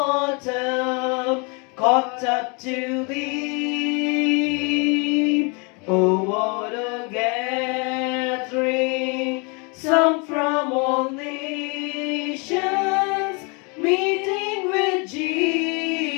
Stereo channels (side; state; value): right; quieter; 32.4 dB